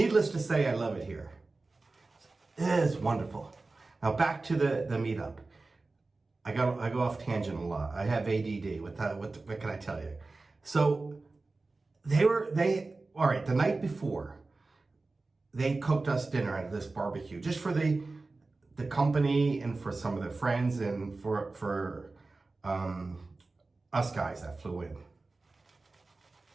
to say, I love it here. It is wonderful. Now back to the meetup. I go off tangent a lot. I have ADD. What can I tell you? So all right, the night before, they cooked us dinner at this barbecue, just for the company and for some of the friends and for us guys that flew in.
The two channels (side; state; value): left; quieter; 3.5 dB